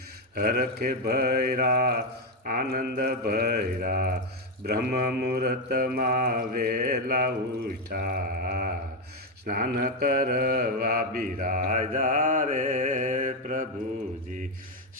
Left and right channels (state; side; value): normal; both; correlation 0.07